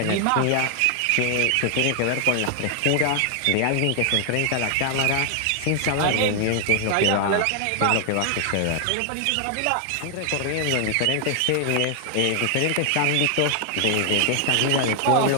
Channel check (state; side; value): different; both; correlation 0.00